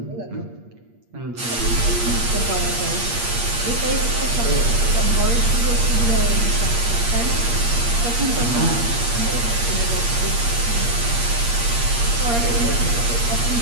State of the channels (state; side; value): late; left; 8.5 ms